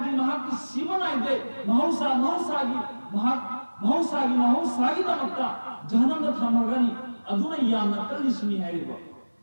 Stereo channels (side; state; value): both; inverted; correlation -1.00